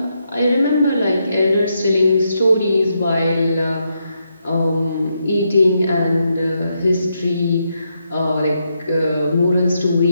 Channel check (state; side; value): inverted; both; correlation -0.81